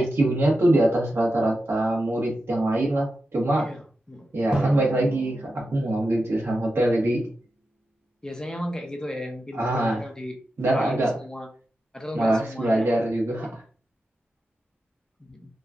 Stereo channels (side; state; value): both; normal; correlation 0.90